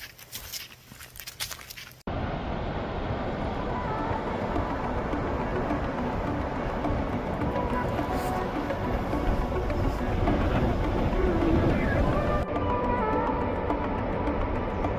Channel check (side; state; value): both; identical; correlation 1.00